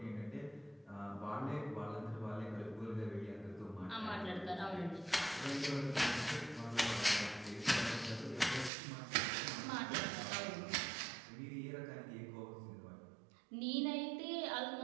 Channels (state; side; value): drops out; left; at 8.7 s